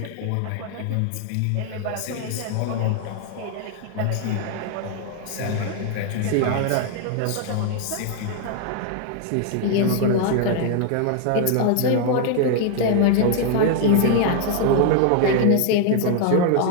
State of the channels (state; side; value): different; both; correlation 0.00